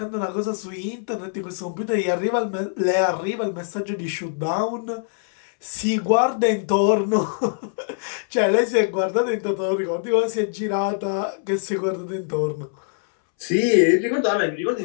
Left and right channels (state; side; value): silent; right; 63 dB below the other